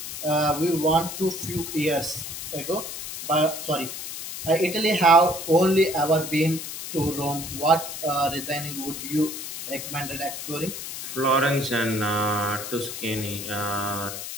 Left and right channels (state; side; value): noise; left; hiss, 8 dB below the sound